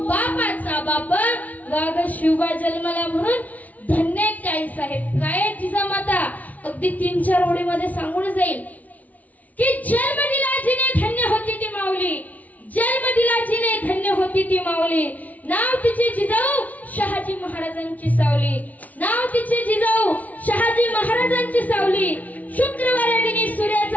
बापाचा बाप वाघ शिवबा जन्माला. म्हणून धन्य आई साहेब. काय जिजामाता अगदी 3-4 ओळीमध्ये सांगून जाईल की जन्म दिला जिने धन्य होती ती माऊली, जन्म दिला जिने धन्य होती ती माऊली. नाव तिचे जिजाऊ शहाजी महाराजांची सावली, नाव तिचे जिजाऊ शहाजी महाराजांची सावली. शुक्रवार दिनी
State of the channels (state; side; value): late; right; 0.074 ms